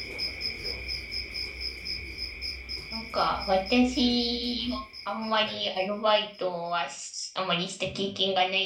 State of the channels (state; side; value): identical; both; correlation 1.00